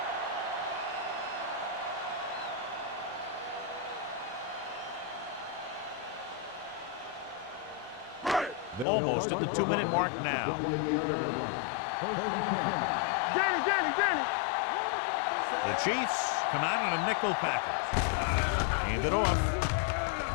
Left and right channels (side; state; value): right; drops out; at 8.8 s